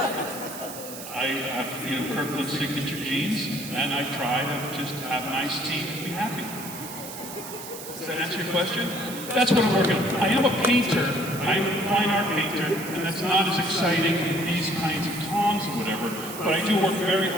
I have Kirkland signature jeans and I try to just have an iced tea and be happy. Does that answer your question? That's what I'm working on. I am a painter. I'm a fine art painter, and that's not as exciting in these kinds of Tom hobbies or whatever, but I do work very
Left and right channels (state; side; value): noise; right; hiss, 11 dB below the sound